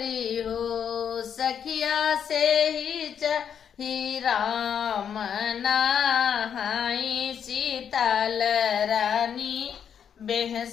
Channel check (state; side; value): quieter; right; 8.1 dB